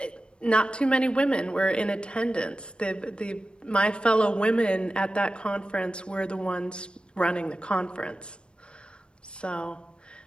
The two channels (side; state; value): right; late; 0.055 ms